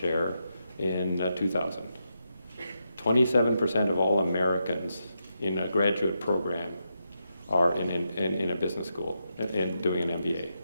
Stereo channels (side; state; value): both; inverted; correlation -0.84